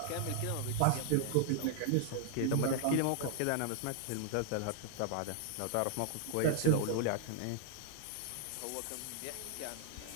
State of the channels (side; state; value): both; different; correlation 0.00